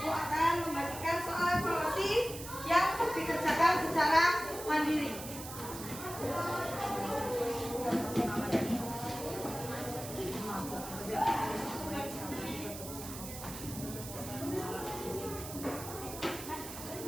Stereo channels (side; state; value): right; noise; hiss, 10 dB below the sound